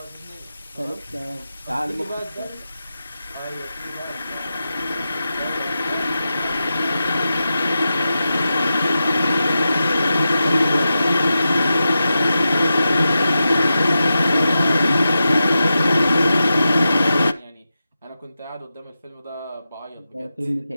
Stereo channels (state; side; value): inverted; both; correlation -0.91